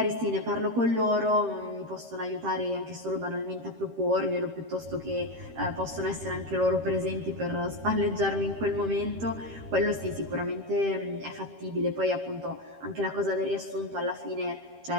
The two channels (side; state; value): left; late; 13 ms